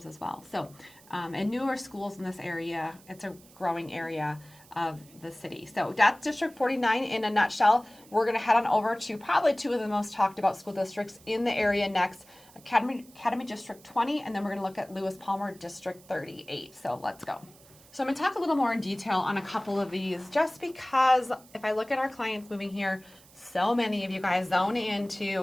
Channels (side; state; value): right; noise; hiss, 24 dB below the sound